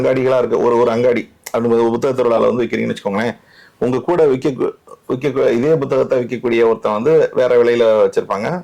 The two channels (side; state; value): both; identical; correlation 1.00